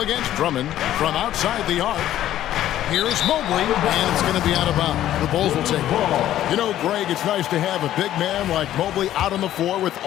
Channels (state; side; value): quieter; right; 12.6 dB